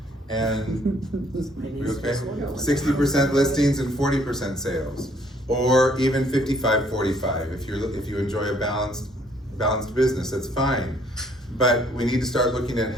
and, we okay? 60% listings and 40% sales, or even 55-45 if you enjoy a balanced business, that's fine. But we need to start looking at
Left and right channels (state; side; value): normal; both; correlation 0.64